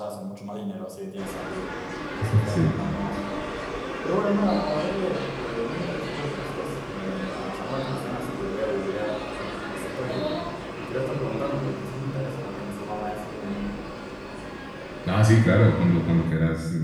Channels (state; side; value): identical; both; correlation 1.00